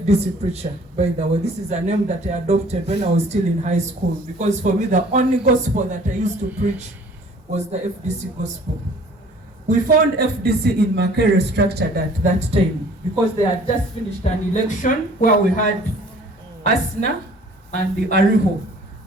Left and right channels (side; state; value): both; normal; correlation 0.52